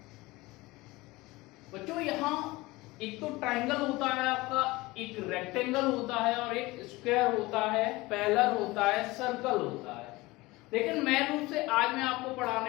बच्चों यहाँ एक तो ट्राइंगल होता है आपका, एक रेक्टेंगल होता है और एक स्क्वायर होता है, पैरेलल होता है, सर्कल होता है। लेकिन मैं रूप से आज मैं आपको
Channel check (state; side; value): quieter; right; 21.1 dB